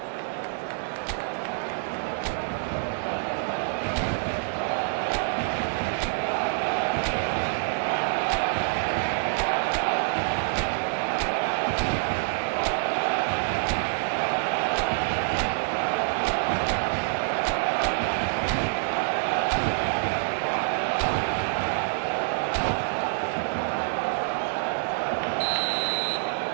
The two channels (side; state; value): left; silent; digital silence